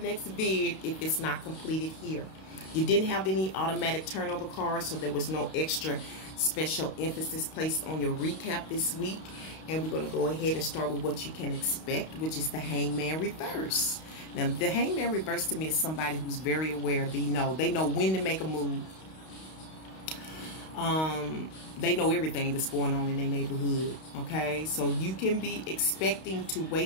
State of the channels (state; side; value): late; right; 32 ms